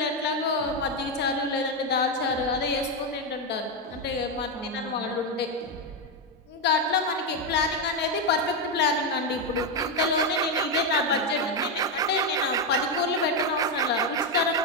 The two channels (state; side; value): normal; both; correlation 0.06